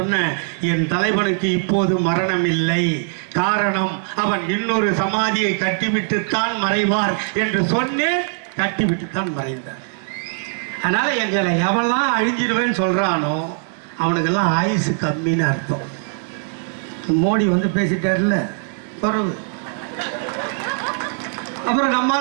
என் தலைவனுக்கு இப்போது மரணம் இல்லை, காரணம் அவன் இன்னொரு சமாதியை கட்டிவிட்டுத்தான் மறைவார் என்று சொன்னேன். கட்டிவிட்டுத்தான் மறைந்தார். அதனால எங்களை எவெல்லாம் அழிஞ்சிருவேன்னு சொல்றானோ அவனுக்கெல்லாம் ஆயுசு கம்மின்னு அர்த்தம். மோடி வந்து பேசிட்டார்ல குறவு. அப்புறம்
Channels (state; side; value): silent; left; 64 dB below the other